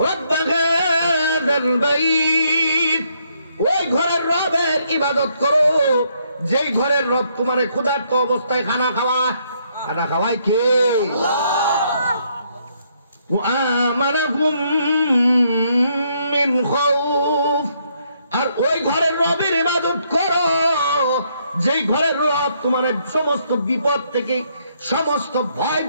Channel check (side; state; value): both; inverted; correlation -0.72